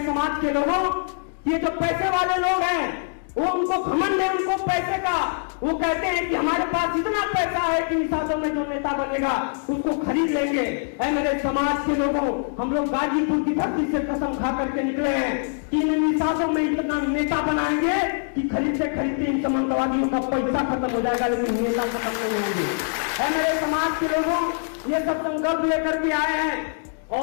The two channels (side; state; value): right; silent; 63 dB below the other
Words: समाज के लोगों, ये जो पैसे वाले लोग हैं वो उनको घमंड है उनको पैसे का। वो कहते हैं कि हमारे पास इतना पैसा है कि निषादों में जो नेता बनेगा उसको खरीद लेंगे। ऐ मेरे समाज के लोगों, हम लोग गाजीपुर की धरती से कसम खा करके निकले हैं कि इन निषादों में इतना नेता बनाएंगे कि खरीदते खरीदते इन समाजवादियों का पैसा खत्म हो जाएगा, लेकिन नेता खत्म नहीं होंगे। ऐ मेरे समाज के लोगों, ये सब संकल्प लेकर के आए हैं